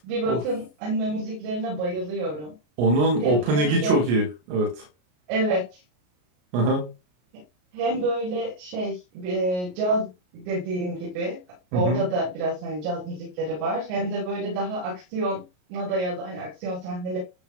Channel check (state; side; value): late; left; 33 ms